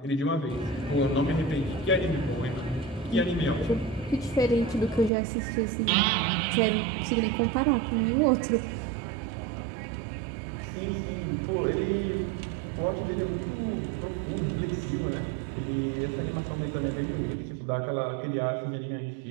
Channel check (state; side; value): drops out; left; at 5.1 s